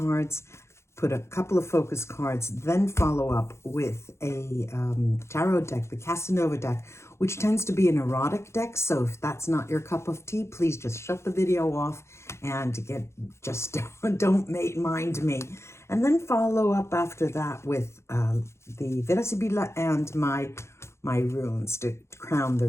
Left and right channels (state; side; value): late; right; 0.13 ms